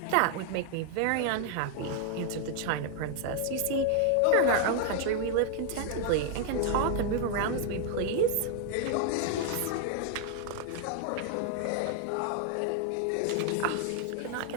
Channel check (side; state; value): both; different; correlation 0.00